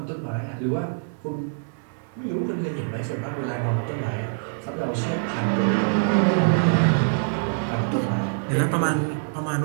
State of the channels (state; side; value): silent; left; 62 dB below the other